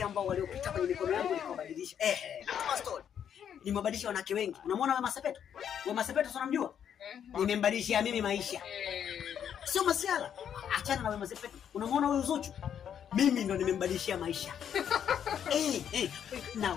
ambao waliopita kwenye mikono yangu nikabadilisha. Nataka story. Nimebadilisha wanawake wengi. Unamwona Wema Sepetu? Wema Sepetu unamjua? Nimembadilishia mimi maisha. Sio masiala. Achana na Wema Sepetu. Unamwona huyu Zuchu? Mimi ndo nimembadilishia maisha. Na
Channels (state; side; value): quieter; right; 8.8 dB